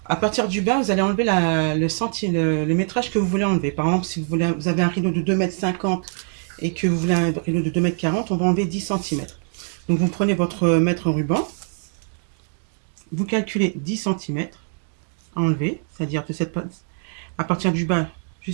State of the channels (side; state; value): left; silent; 56 dB below the other